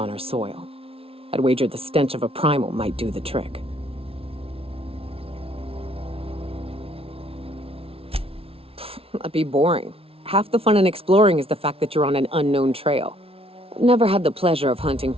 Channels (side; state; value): left; late; 0.27 ms